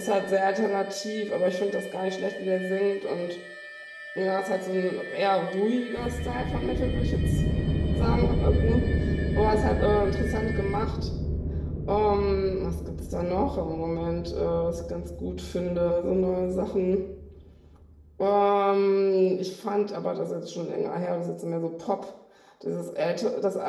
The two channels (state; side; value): identical; both; correlation 1.00